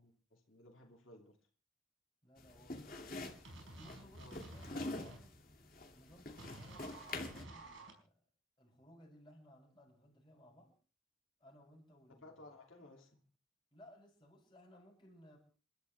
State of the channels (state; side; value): normal; both; correlation 0.53